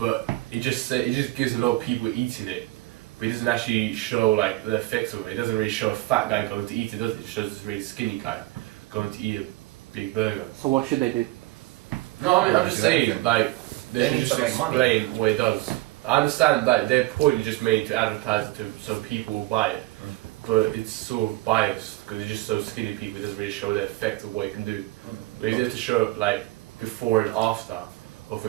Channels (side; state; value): left; quieter; 18.5 dB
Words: it just gives a lot of people eating it, but it doesn't actually show like the effects of it. It doesn't really show a fat guy going to eat it, does it? It shows this really skinny guy going to eat a big burger. So what should they do? No, I mean, I'm just saying, like, they should just explain what it does. I understand that their point is just made to advertise it to so people will buy it, but it's sort of biased because it's just so skinny people. It doesn't really show the effect of what it can do. But if you have to show like before and after of a